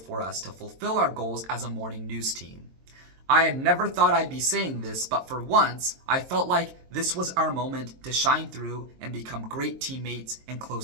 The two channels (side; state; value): left; late; 22 ms